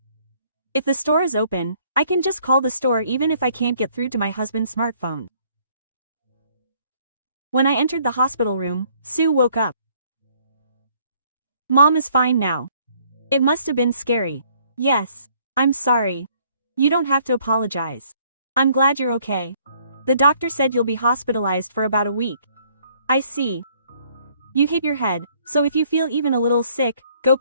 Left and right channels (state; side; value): inverted; both; correlation -0.63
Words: If the store is open, I can just call the store even if I can't get through to my husband's smartphone. When I entered the hospital room, Sue woke up. Mom is fine now. It must have been scary. Yes. I'm sorry. You don't have to apologize. I'm glad you're okay. The doctor said you'll be hospitalized for about a week. I see. You hit your head, so if you feel even a little sick, go